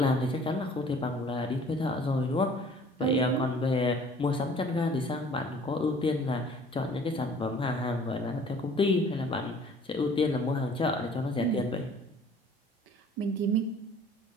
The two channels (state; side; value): normal; both; correlation 0.52